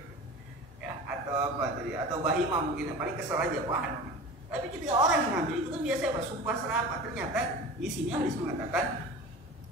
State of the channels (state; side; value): normal; both; correlation 0.35